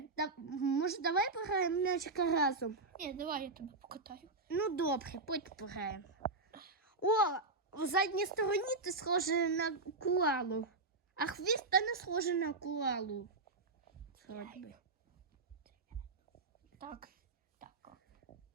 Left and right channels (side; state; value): left; quieter; 3.4 dB